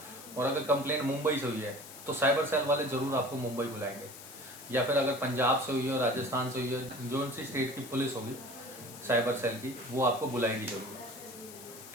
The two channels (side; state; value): left; noise; hiss, 15 dB below the sound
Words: और अगर कंप्लेंट मुंबई से हुई है तो साइबर सेल वाले ज़रूर आपको मुंबई बुलाएंगे, या फिर अगर पंजाब से हुई है, राजस्थान से हुई है, जो सी स्टेट की पुलिस होगी साइबर सेल की, वो आपको बुलाएगी जरूर,